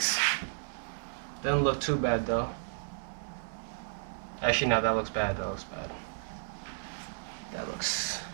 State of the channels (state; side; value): silent; left; digital silence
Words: Doesn't look too bad though. Actually, no, that looks bad. That looks bad.